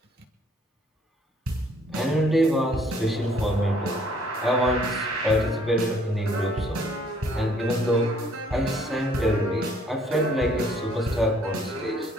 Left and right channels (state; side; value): normal; both; correlation 0.62